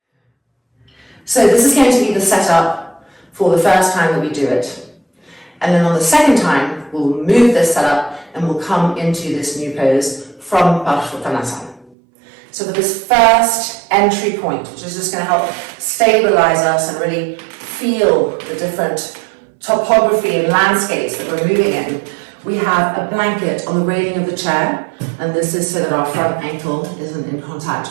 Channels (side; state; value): left; drops out; at 12.0 s